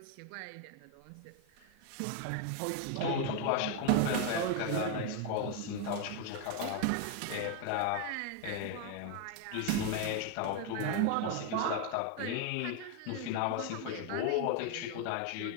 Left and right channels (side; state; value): both; different; correlation 0.01